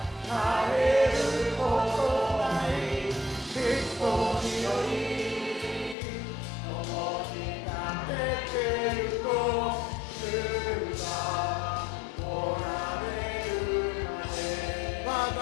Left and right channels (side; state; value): right; drops out; at 6.0 s